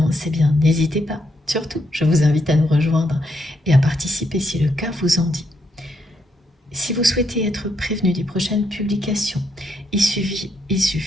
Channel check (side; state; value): both; normal; correlation 0.77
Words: eh bien n'hésitez pas. Surtout, je vous invite à nous rejoindre et à participer si le cas vous en dit. Si vous souhaitez être prévenu des prochaines publications, il suffit